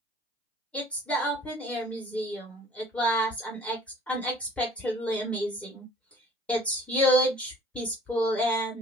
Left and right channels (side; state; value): both; normal; correlation 0.51